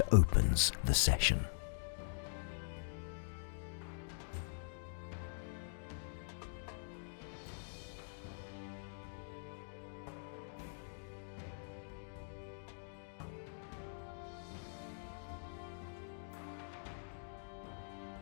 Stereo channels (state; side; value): silent; right; digital silence